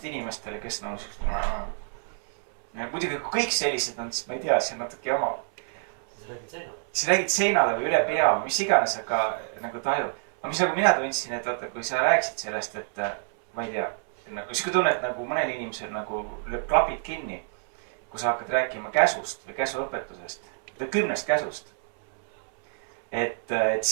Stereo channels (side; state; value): left; silent; 60 dB below the other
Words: inimestele, kes nagu muidugi kui kõik sellised on, siis ma ei tea, see on natuke jama. siis räägid seinale või üle pea või mis iganes, aga nagu tajud. aga mis nagu mina tundsin, et vaata, kui sa rääkisid sellest, et ma ei tea, nagu sihuke tunne, et nagu mõnel inimesel nagu lööb klapid kinni, kui sa hakkad rääkima käsust või käsuõpetusest, 10 käsust. et